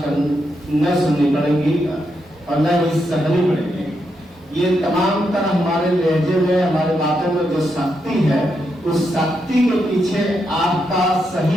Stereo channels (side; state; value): both; normal; correlation 0.82